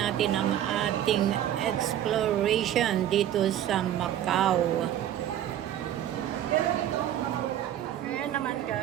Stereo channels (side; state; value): left; quieter; 11.3 dB